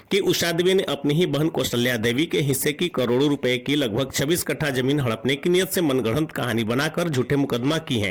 कि उषा देवी ने अपनी ही बहन कौशल्या देवी के हिस्से की करोड़ों रुपए की लगभग 26 कट्ठा जमीन हड़पने की नियत से मनगढ़ंत कहानी बनाकर झूठे मुकदमा की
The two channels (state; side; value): identical; both; correlation 1.00